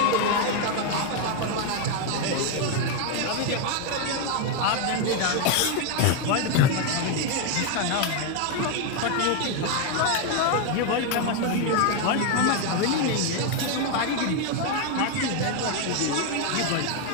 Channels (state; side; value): different; both; correlation 0.01